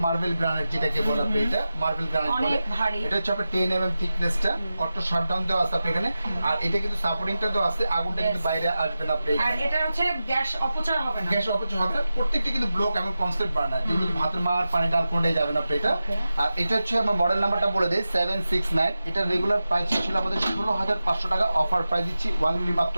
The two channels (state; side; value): inverted; both; correlation -0.93